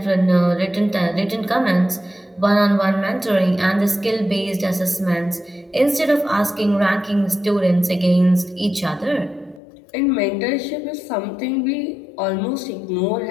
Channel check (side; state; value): right; drops out; at 9.6 s